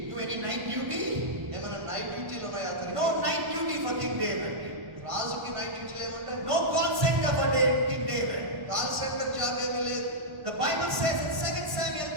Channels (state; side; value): late; left; 1.5 ms